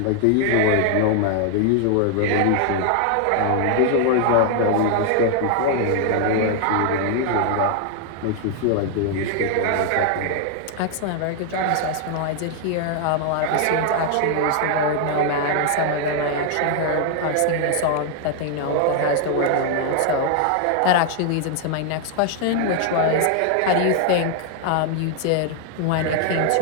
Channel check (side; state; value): both; different; correlation 0.00